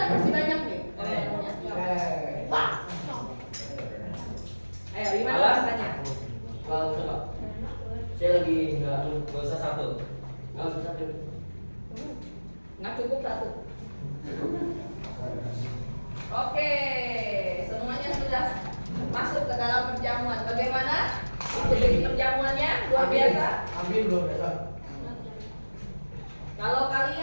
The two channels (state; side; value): inverted; both; correlation -1.00